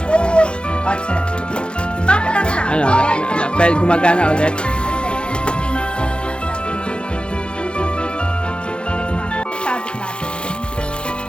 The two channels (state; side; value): late; right; 0.054 ms